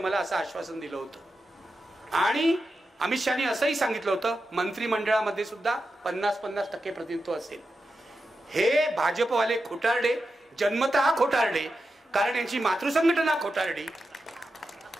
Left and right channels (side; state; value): both; normal; correlation 0.89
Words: असं आश्वासन दिलं होतं. आणि अमित शहानी असंही सांगितलं होतं मंत्रिमंडळामध्ये सुद्धा 50-50% प्रतिनिधित्व असेल. हे भाजपवाले खोटारडे, जन्मतः खोटारडे, कारण यांची मातृसंघटना खोटारडी.